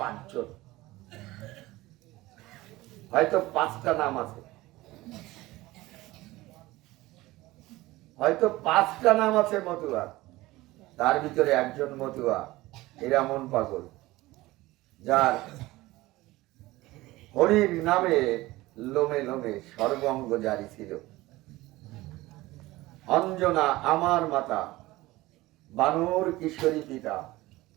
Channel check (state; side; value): quieter; left; 18.9 dB